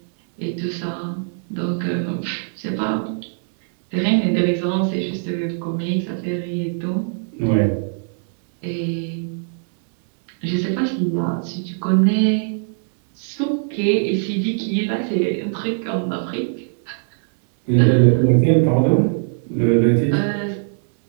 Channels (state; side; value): silent; left; digital silence